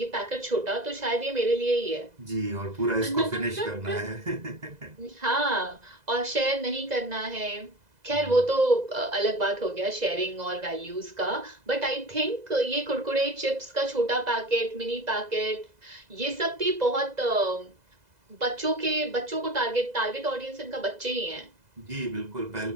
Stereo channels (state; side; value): late; left; 2.0 ms